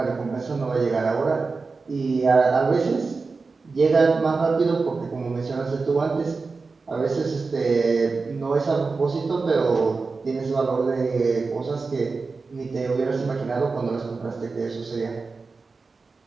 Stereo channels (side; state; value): left; quieter; 4.2 dB